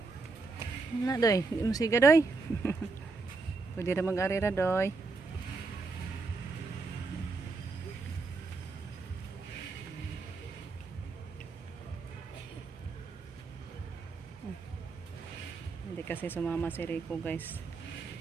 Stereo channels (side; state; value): left; quieter; 4.0 dB